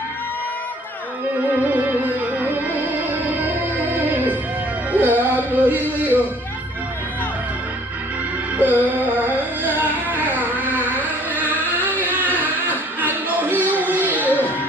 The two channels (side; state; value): both; normal; correlation 0.56